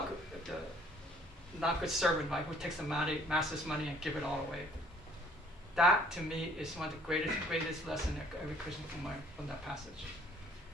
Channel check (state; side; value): normal; both; correlation 0.59